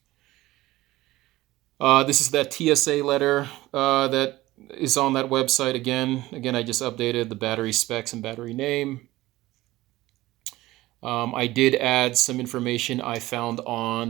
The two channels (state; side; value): quieter; left; 17.6 dB